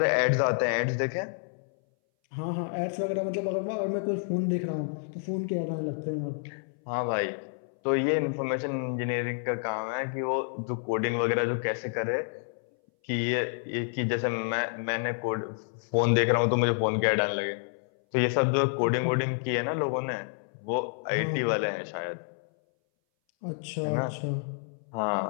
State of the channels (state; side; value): silent; right; 59 dB below the other